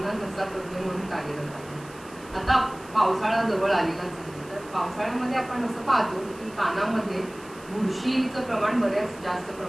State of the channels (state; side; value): noise; right; hiss, 22 dB below the sound